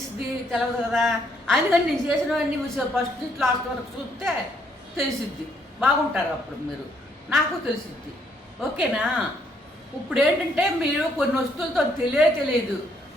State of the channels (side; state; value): both; normal; correlation 0.70